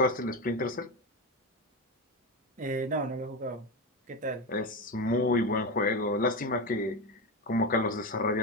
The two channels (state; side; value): normal; both; correlation 0.15